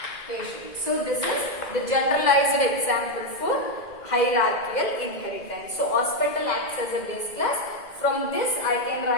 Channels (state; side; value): late; right; 2.0 ms